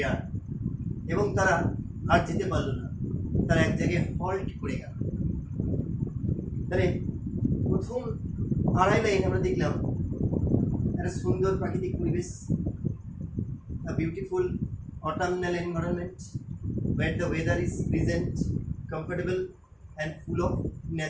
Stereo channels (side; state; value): both; identical; correlation 1.00